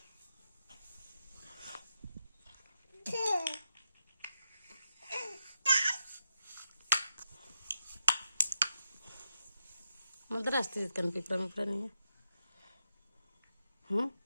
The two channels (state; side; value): inverted; both; correlation -0.86